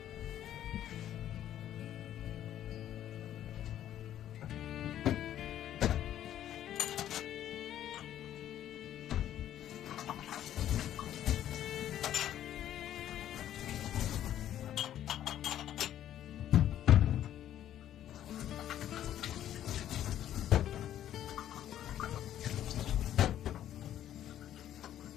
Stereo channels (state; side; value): quieter; right; 11.5 dB